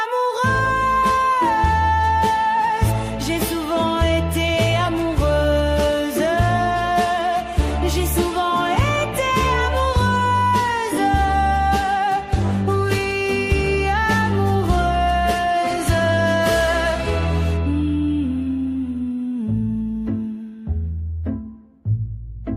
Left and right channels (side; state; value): both; identical; correlation 1.00